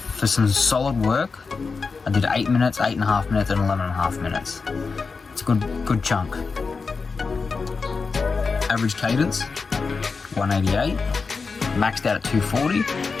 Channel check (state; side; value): quieter; right; 4.7 dB